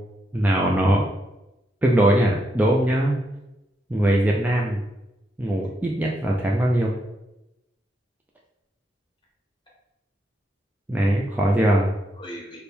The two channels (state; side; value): normal; both; correlation 0.80